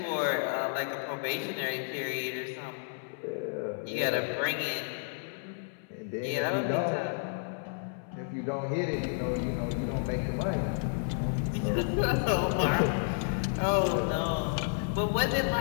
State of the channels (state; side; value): silent; right; 57 dB below the other